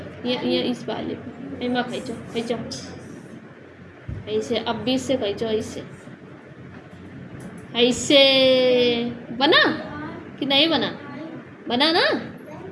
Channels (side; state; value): both; identical; correlation 1.00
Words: ये इस वाले पे एमा खींचो खींचो ऐसे, अब 20 से खींचो ऐसे, ऐसे बना कि नहीं बना, बना ना।